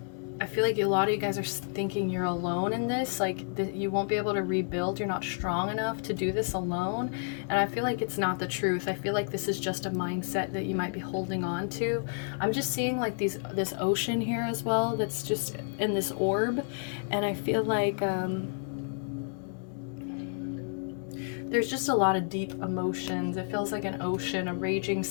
I feel like a lot of you guys are thinking you're alone in this, like you won't be able to rebuild, you're not strong enough to do this alone. And I feel like it's not the truth. I feel like this is just a mindset that you might be holding on to. I'm just seeing like this ocean here as well that's just in this orb, and I feel like there's just a lot of deep emotions. It feels like an ocean, a raging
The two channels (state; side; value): silent; right; 57 dB below the other